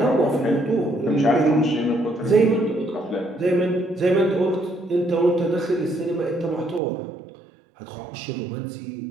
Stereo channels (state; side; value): drops out; left; at 6.8 s